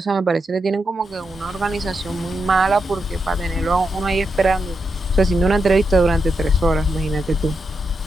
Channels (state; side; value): normal; both; correlation 0.85